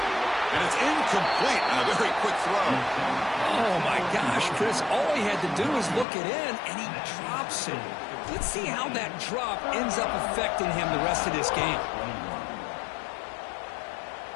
it's incomplete on a very quick throw. Oh, my gosh, Chris. All he had to do was look it in, and he drops it. Let's see how that drop ends up affecting him the rest of this game.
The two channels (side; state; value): right; drops out; at 6.1 s